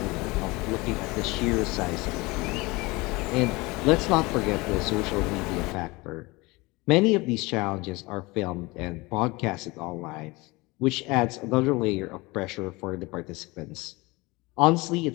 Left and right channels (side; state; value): right; quieter; 23.4 dB